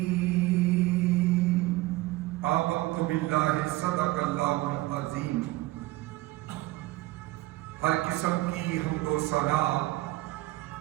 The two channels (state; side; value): quieter; left; 19.0 dB